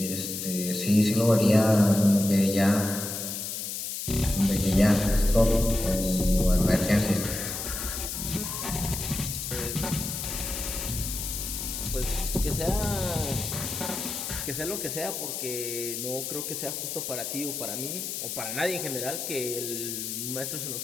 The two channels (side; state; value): left; noise; hiss, 5 dB below the sound